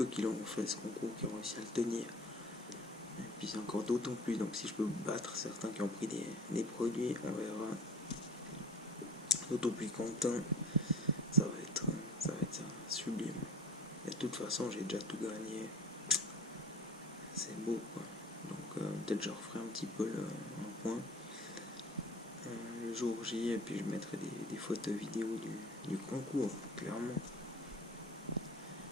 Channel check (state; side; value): normal; both; correlation 0.44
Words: qui l'ont fait ce concours, qui ont réussi à le tenir. Et puis c'est encore d'autant plus, donc si je peux battre certains qui ont pris des produits, on verra. D'autant plus content, ça va être sublime. Et de toute façon, j'ai déjà tout gagné. C'est beau quoi. Donc peut-être je referai un petit peu un point le jour J, et puis je mettrai des photos vidéo du concours, clairement.